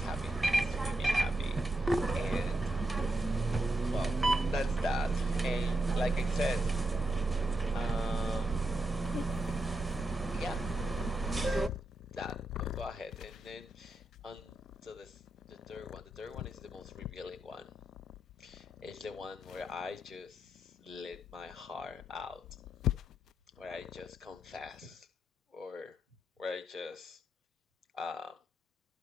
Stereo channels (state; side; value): normal; both; correlation 0.85